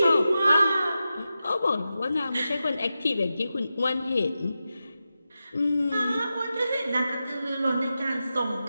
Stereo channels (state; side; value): inverted; both; correlation -0.91